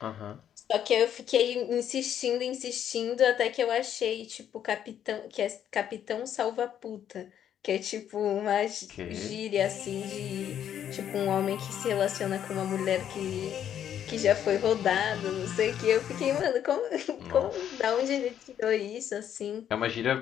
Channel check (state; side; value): quieter; right; 9.8 dB